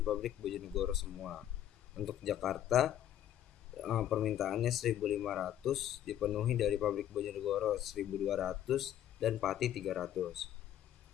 pabrik Bojonegoro semua. Untuk Jakarta permintaannya 1.500 dipenuhi dari pabrik Bojonegoro 1.200 dan Pati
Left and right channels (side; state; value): right; quieter; 11.2 dB